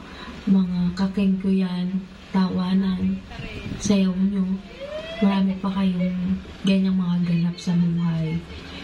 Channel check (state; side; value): identical; both; correlation 1.00